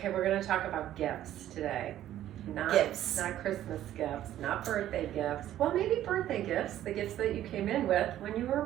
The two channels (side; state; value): left; quieter; 12.5 dB